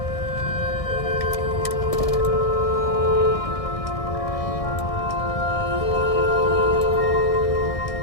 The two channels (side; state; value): right; late; 1.6 ms